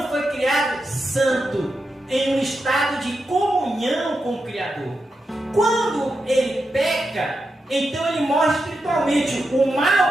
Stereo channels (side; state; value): both; normal; correlation 0.87